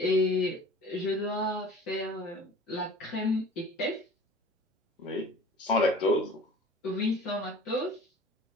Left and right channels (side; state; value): both; normal; correlation 0.44